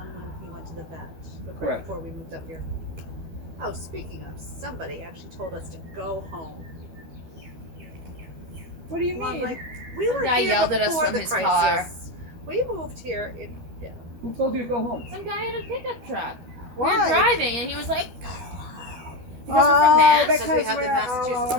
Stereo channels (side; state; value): left; late; 12 ms